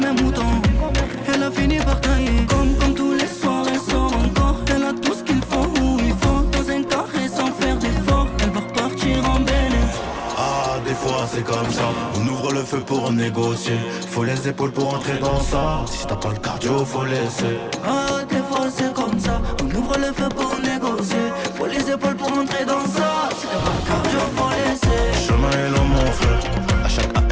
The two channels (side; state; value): both; identical; correlation 1.00